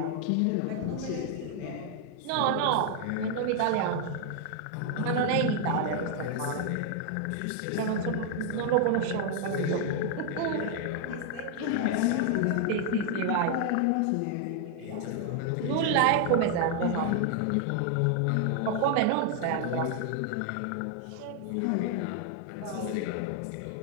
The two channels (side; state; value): both; different; correlation 0.00